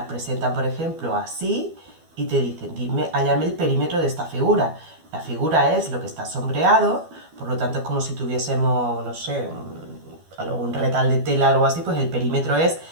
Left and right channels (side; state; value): left; late; 12 ms